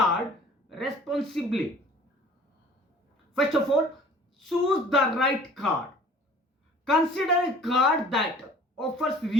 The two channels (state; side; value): normal; both; correlation 0.49